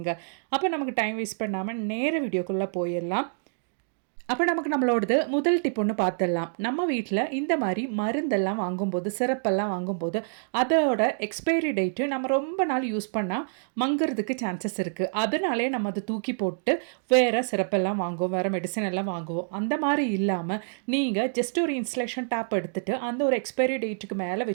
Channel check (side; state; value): left; silent; digital silence